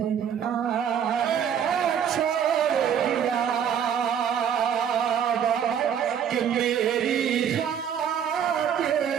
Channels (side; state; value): left; quieter; 8.4 dB